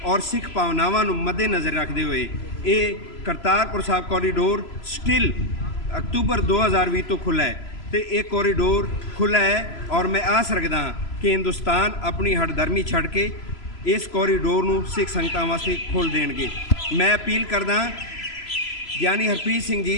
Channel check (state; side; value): late; right; 3.0 ms